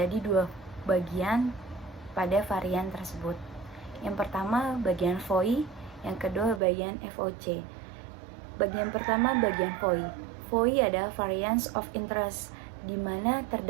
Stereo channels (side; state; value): left; drops out; at 6.6 s